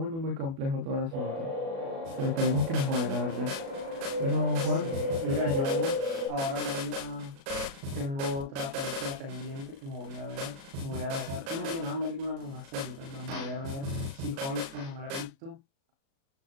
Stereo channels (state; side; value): late; left; 37 ms